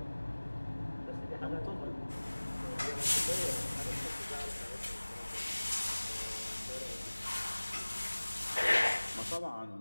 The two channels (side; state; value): both; inverted; correlation -1.00